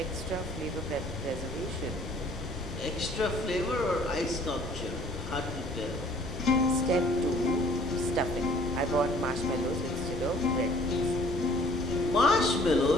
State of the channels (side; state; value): both; normal; correlation 0.55